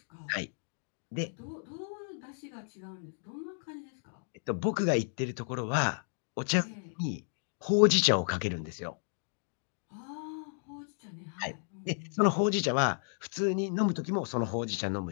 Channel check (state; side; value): silent; right; digital silence